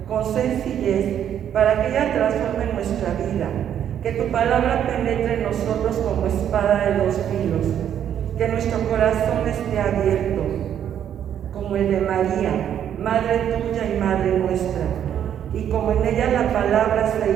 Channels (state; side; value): quieter; left; 9.7 dB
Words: con sencillez, para que ella transforme nuestra vida. Que tu palabra penetre en nosotros como espada de dos filos. Que nuestro corazón esté abierto, como el de María, Madre tuya y Madre nuestra. Y como en ella la palabra se